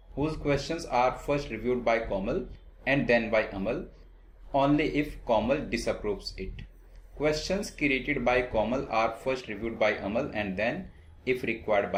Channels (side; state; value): both; identical; correlation 1.00